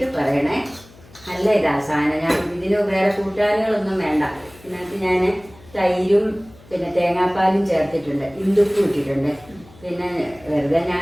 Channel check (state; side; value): noise; left; hum, 24 dB below the sound